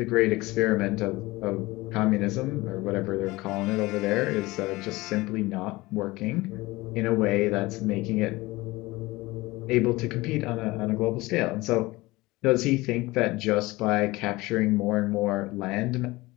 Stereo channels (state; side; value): quieter; right; 20.7 dB